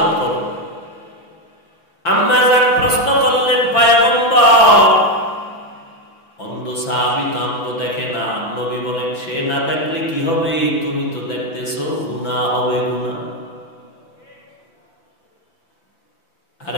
করো। আম্মা জান প্রশ্ন করলেন পয়গম্বর, অন্ধ সাহাবী তো আমগো দেখে না। নবী বলেন সে না দেখলে কি হবে, তুমি তো দেখতেছো, গুনাহ হবে, গুনাহ। আর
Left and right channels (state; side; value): late; right; 5.9 ms